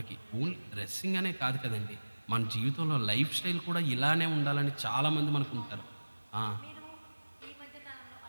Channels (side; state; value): both; inverted; correlation -1.00